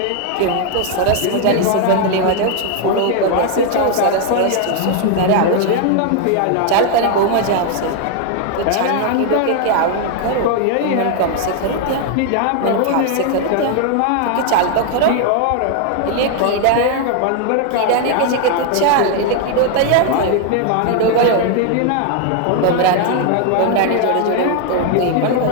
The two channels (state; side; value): different; both; correlation 0.00